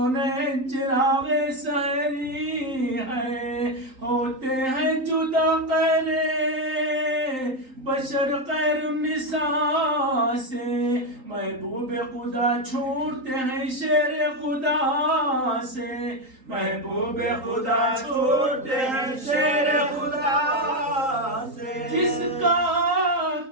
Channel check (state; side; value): late; left; 3.9 ms